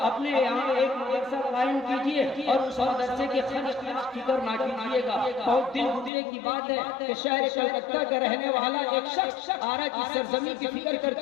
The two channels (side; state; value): right; drops out; at 6.1 s